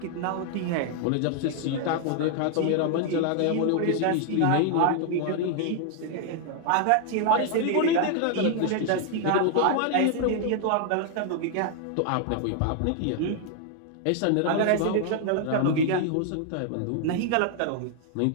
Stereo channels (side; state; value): both; different; correlation 0.00